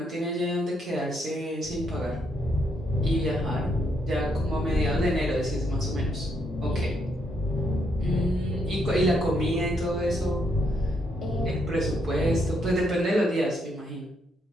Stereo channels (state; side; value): normal; both; correlation 0.75